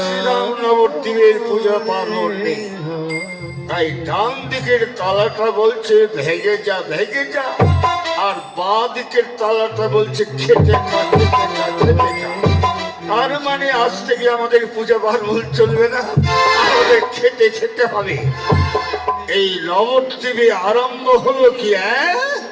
শ্রীরাম নবদ্বীপের পূজা পার্বণ নেই, তাই ডান দিকের তালাটা বলছে ভেঙে যা ভেঙে যা, আর বাঁ দিকের তালাটা বলছে খেতে খা খেতে খা খেতে খা। তার মানে আজ থেকে আমাদের পূজা পার্বণ চলবে না, আমাদের খেতে খেতে হবে। এই নবদ্বীপে আরম্ভ হলো কি,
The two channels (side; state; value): both; identical; correlation 1.00